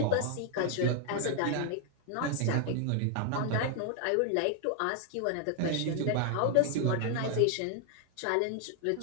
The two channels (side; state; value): both; different; correlation 0.00